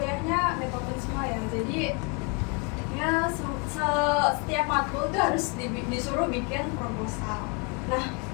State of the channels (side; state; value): right; quieter; 32.9 dB